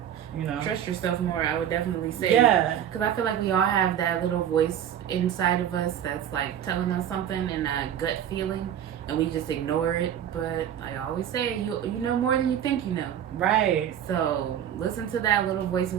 Trust yourself more, I would definitely say. Yeah. Because I feel like we all have that little voice inside of us that's like telling us something and a gut feeling, and we just ignore it. But I always say, you know more than you think you know. Right. So listen to that little voice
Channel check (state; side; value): quieter; left; 9.9 dB